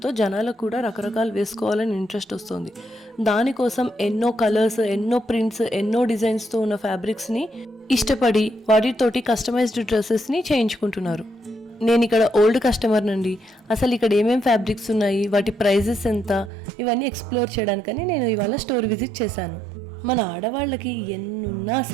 జనాలకు కూడా రకరకాలు వేసుకోవాలని ఇంట్రెస్ట్ వస్తుంది. దానికోసం ఎన్నో కలర్స్, ఎన్నో ప్రింట్స్, ఎన్నో డిజైన్స్తో ఉన్న ఫ్యాబ్రిక్స్ని ఇష్టపడి వాటితోటి కస్టమైజ్డ్ డ్రెస్సెస్ని చేయించుకుంటున్నారు. నేను ఇక్కడ ఓల్డ్ కస్టమర్ నుండి అసలు ఇక్కడ ఏమేమి ఫ్యాబ్రిక్స్ ఉన్నాయి, వాటి ప్రైజెస్ ఎంత, ఇవన్నీ ఎక్స్ప్లోర్ చేయడానికని నేను ఇవాళ స్టోర్ విజిట్ చేశాను. మన ఆడవాళ్ళకి ఎన్నున్నా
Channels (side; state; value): left; drops out; at 16.5 s